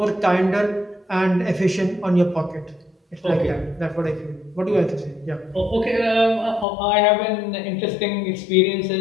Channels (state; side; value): drops out; right; at 6.7 s